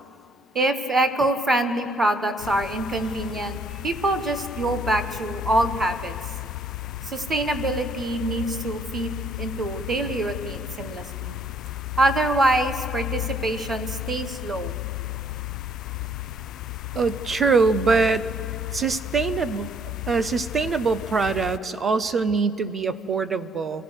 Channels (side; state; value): both; normal; correlation 0.64